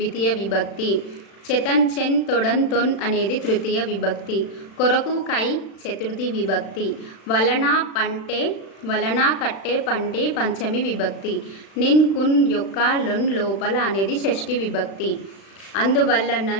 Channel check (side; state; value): right; late; 36 ms